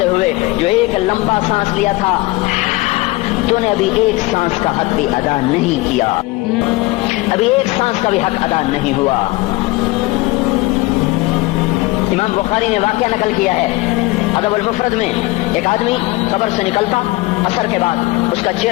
ہوئے جو ایک لمبا سانس لیا تھا، تو نے ابھی ایک سانس کا حق بھی ادا نہیں کیا، ابھی ایک سانس کا بھی حق ادا نہیں ہوا. امام بخاری نے واقعہ نقل کیا ہے ادب المفرد میں، ایک آدمی قبر سے نکلتا، عصر کے بعد اس کا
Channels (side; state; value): right; quieter; 21.2 dB